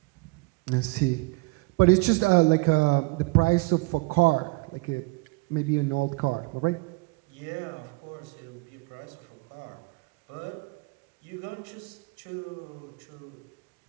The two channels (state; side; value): quieter; left; 25.8 dB